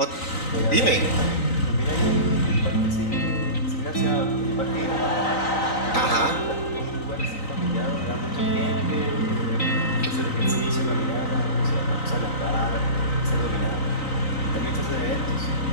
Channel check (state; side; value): late; right; 3.9 ms